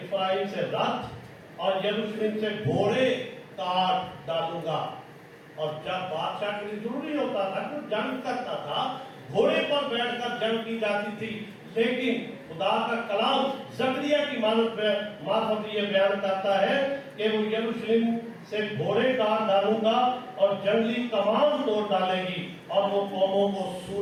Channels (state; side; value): identical; both; correlation 1.00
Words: سے رتھ اور یروشلم سے گھوڑے کاٹ ڈالوں گا۔ اور جب بادشاہ کے لیے ضروری ہوتا تھا کہ جنگ کرتا تھا، گھوڑے پر بیٹھ کر جنگ کی جاتی تھی، لیکن خدا کا کلام زکریا کی معرفت یہ بیان کرتا ہے کہ وہ یروشلم سے گھوڑے کاٹ ڈالوں گا اور جنگلی کمان توڑ ڈالے گی، اور وہ قوموں کو